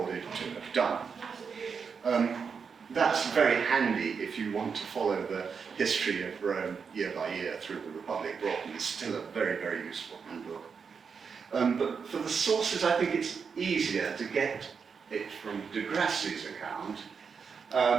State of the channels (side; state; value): left; quieter; 5.9 dB